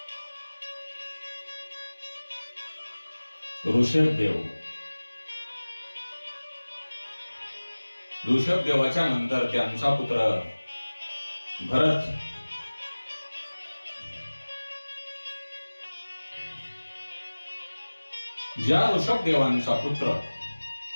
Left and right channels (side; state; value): both; inverted; correlation -1.00